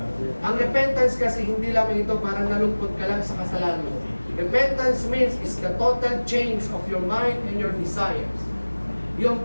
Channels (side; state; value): both; inverted; correlation -1.00